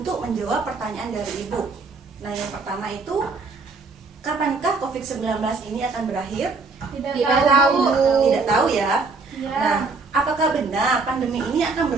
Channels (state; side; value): quieter; left; 4.0 dB